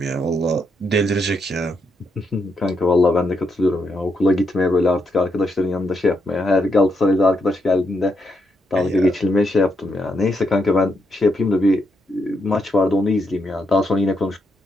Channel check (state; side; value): normal; both; correlation 0.80